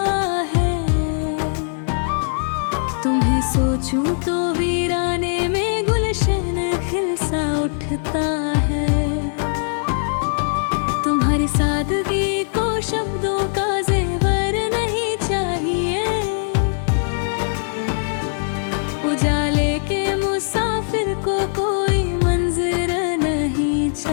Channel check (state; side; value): silent; right; 61 dB below the other